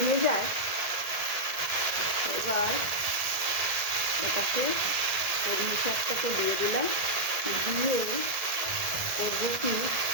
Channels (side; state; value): left; late; 1.6 ms